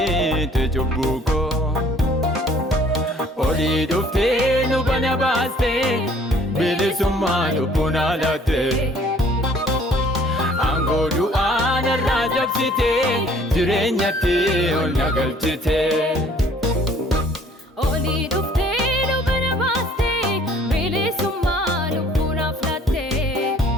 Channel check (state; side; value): normal; both; correlation 0.57